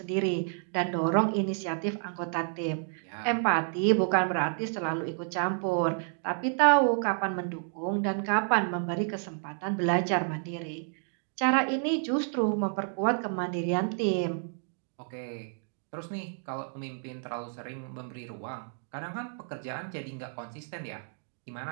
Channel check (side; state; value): left; silent; 58 dB below the other